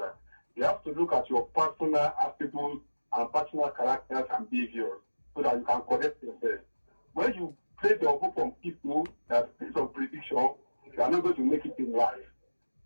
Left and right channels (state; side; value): inverted; both; correlation -1.00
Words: You have to look at your personal attributes and personal characters and behaviors so that you can correct yourself. When you place your hope on people that based on prediction, you are not going to make it in life.